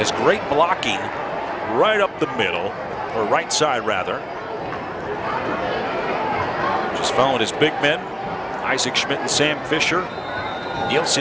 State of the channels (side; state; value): both; identical; correlation 1.00